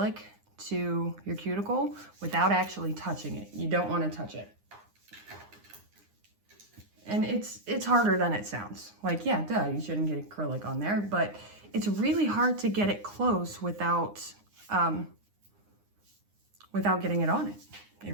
to your cuticle without actually touching it. You don't want to touch it. And it's harder than it sounds. Like, yeah, duh, you shouldn't get acrylic on there, but it's really hard to get it close without getting it on it. It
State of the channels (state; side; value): late; left; 9.8 ms